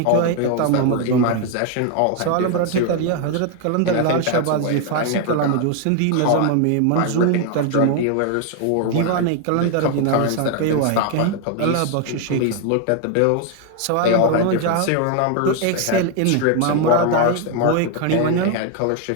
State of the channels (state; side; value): different; both; correlation 0.01